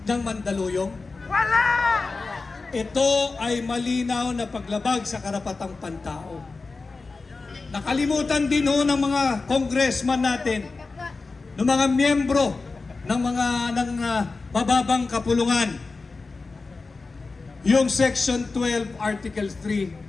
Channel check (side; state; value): right; quieter; 3.9 dB